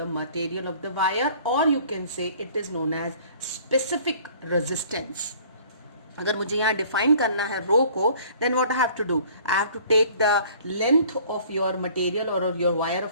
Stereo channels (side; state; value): both; inverted; correlation -0.53